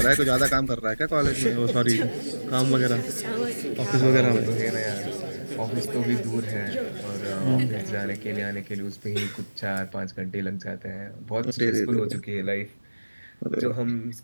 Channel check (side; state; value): both; inverted; correlation -1.00